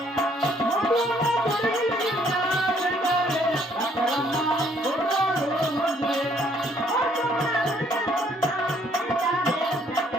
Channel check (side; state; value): both; normal; correlation 0.65